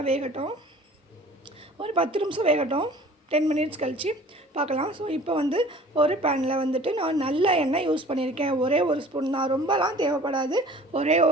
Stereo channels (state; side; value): normal; both; correlation 0.47